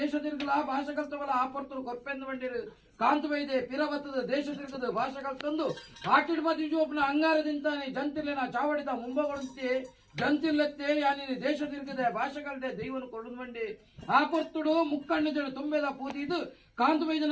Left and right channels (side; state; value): both; identical; correlation 1.00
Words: ತಿರುಗಲ ಭಾಷೆ ಕಲ್ತವಲ್ಲ ಆ ಪರ್ತರು ಕೊರ್ಪೆಂದು ಬಂಡಿರು ಕಾಂತ ವೈದ್ಯ ಪಿರವತ್ತದ ದೇಶ ತಿರುಗದ ಭಾಷೆ ಕಲ್ತಂದು ಆಟಿಡ್ ಮತಿ ಜೋಪನ ಅಂಗಾರದಿಂತಾನೆ ಜಂತಿರ್ಲಿನ ಚಾವಡಿದ ಮುಂಬಗೊಳುತ್ತೆ ಜಂತಿರ್ಲೆತ್ತೆ ಯಾನಿ ದೇಶ ತಿರುಗದೆ ಭಾಷೆ ಕಲ್ದೆ ದೈವನು ಕೊರಡು ಬಂಡಿ ಆ ಪರ್ತುಡು ಮುಕ್ಕಣ್ಣಿದಳು ತುಂಬೆದ ಪೂತಿದು ಕಾಂತ